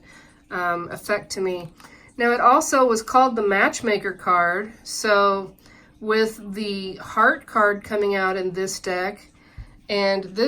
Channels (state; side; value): identical; both; correlation 1.00